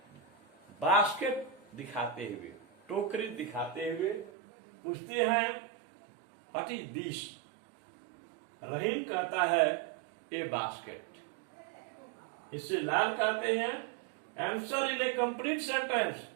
basket दिखाते हुए, टोकरी दिखाते हुए पूछते हैं व्हाट इज दिस। रहीम कहता है ए बास्केट। इससे लाल कहते हैं answer in A complete sentence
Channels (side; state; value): left; drops out; at 4.3 s